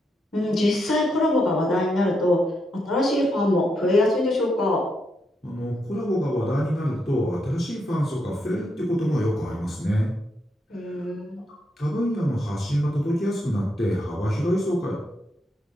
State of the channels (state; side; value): normal; both; correlation 0.80